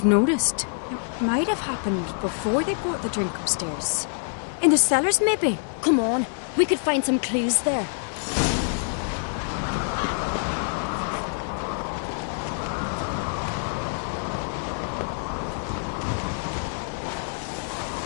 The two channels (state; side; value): silent; right; digital silence